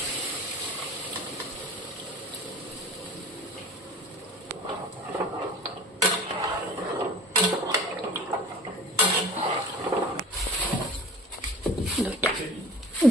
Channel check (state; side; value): normal; both; correlation 0.41